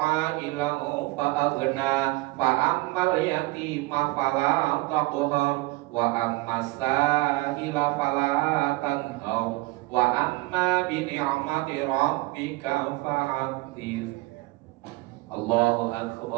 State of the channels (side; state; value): left; quieter; 21.7 dB